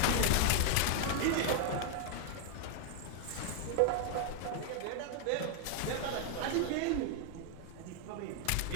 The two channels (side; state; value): both; different; correlation 0.00